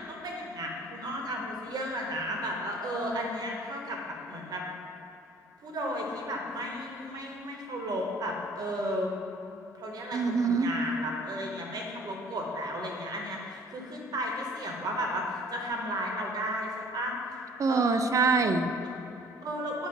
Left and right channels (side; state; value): both; normal; correlation 0.52